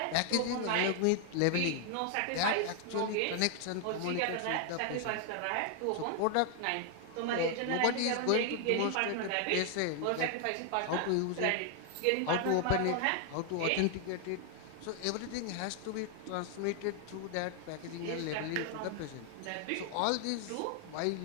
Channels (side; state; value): both; different; correlation 0.00